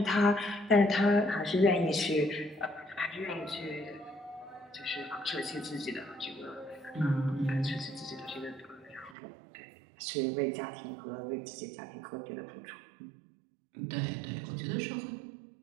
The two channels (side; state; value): left; drops out; at 9.2 s